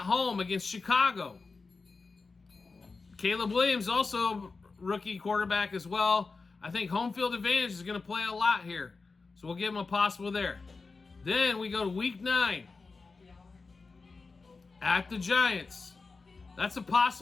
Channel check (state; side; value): quieter; right; 4.2 dB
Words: home against Chicago. Caleb Williams, also rookie quarterback as well. I think home field advantage is going to play a lot here. So we'll give him a possible there. Then we go to Week 9. At the Giants. That's a